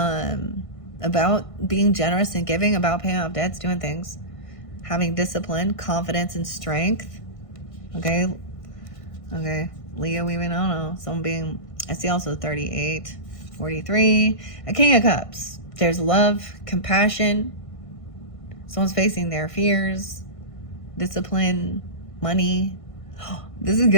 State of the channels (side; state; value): right; late; 1.6 ms